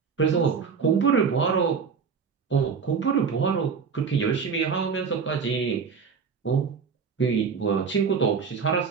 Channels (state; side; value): quieter; left; 5.9 dB